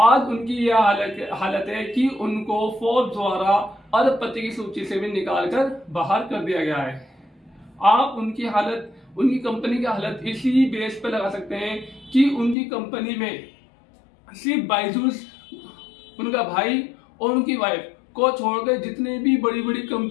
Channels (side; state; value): right; drops out; at 12.6 s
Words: उनकी यह हालत है कि उनको फोर्ब्स द्वारा अरबपति की सूची से भी निकालकर बाहर कर दिया गया है। आप उनकी हालत, उनकी कंपनी की हालत इसी बेस पे लगा सकते हैं कि उनकी कंपनी में सिर्फ बायजूस, उनका भाई और उनकी वाइफ को छोड़कर जितने भी बड़ी बड़ी